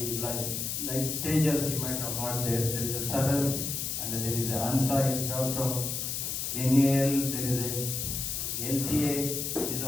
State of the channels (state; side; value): noise; left; hiss, 2 dB below the sound